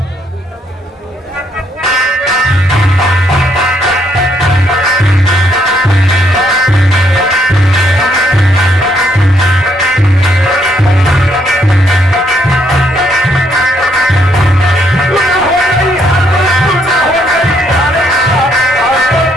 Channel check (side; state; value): both; normal; correlation 0.72